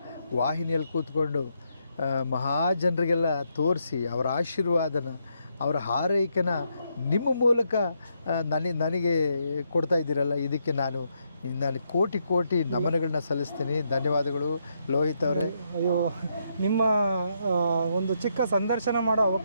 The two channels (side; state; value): both; inverted; correlation -0.78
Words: ವಾಹಿನಿಯಲ್ಲಿ ಕೂತ್ಕೊಂಡು ಮಹಾಜನರಿಗೆಲ್ಲ ತೋರಿಸಿ ಅವರ ಆಶೀರ್ವಾದನ, ಅವರ ಹಾರೈಕೆನ ನಿಮ್ಮ ಮೂಲಕ ನನಗೆ ಕೊಡ್ತಾ ಇದ್ದೀರಲ್ಲ, ಇದಕ್ಕೆ ನಾನು ಕೋಟಿ ಕೋಟಿ ನಮನಗಳನ್ನ ಸಲ್ಲಿಸ್ತೀನಿ. ಧನ್ಯವಾದಗಳು ಲೋಹಿತ್ ಅವರೇ. ಅಯ್ಯೋ, ನಿಮ್ಮ ಒಂದು ಚಿಕ್ಕ ಸಂದರ್ಶನ ಮಾಡೋ